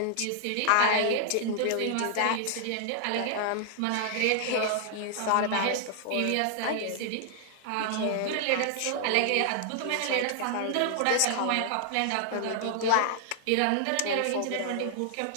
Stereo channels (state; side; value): different; both; correlation -0.01